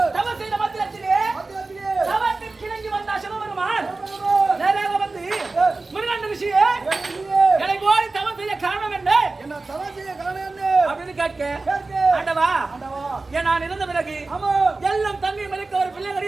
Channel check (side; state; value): left; quieter; 3.5 dB